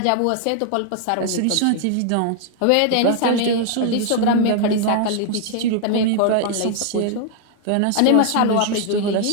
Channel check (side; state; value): both; different; correlation 0.00